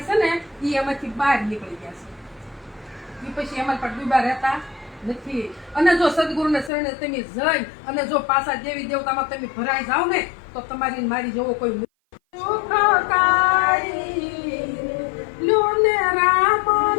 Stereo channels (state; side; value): drops out; right; at 6.7 s